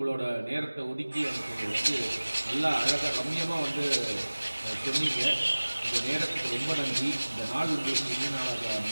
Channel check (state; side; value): inverted; both; correlation -1.00